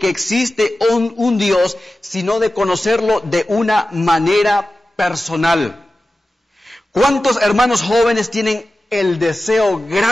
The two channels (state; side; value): normal; both; correlation 0.95